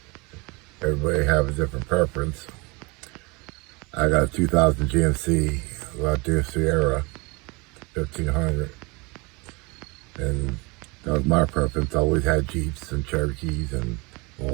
Everybody have a different preference. I got a 2000 GMC Sierra 1500, and that was my preference. I always had Jeeps and Cherokees and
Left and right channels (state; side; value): quieter; left; 27.4 dB